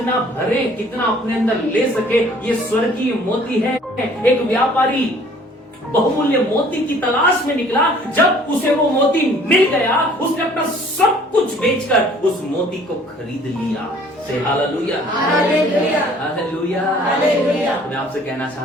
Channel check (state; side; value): normal; both; correlation 0.55